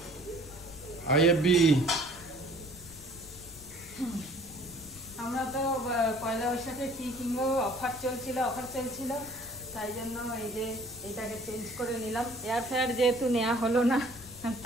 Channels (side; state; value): left; noise; rumble, 19 dB below the sound